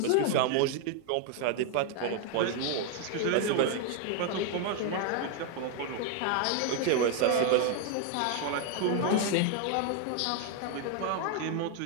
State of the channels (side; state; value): both; different; correlation 0.01